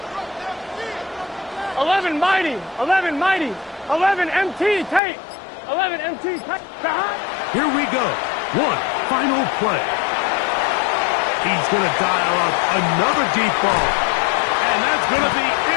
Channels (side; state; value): right; drops out; at 5.0 s